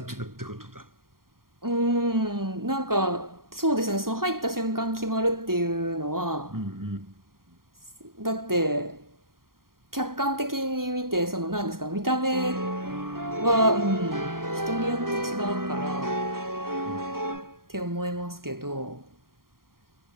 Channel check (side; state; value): left; late; 0.92 ms